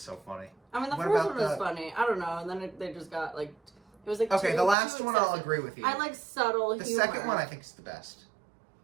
funny. I mean, the first one was funny. I don't know, and then they just got it was okay, the last one I'll agree with you. I like subtle humor. The second one I think is the best.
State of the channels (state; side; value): drops out; left; at 4.8 s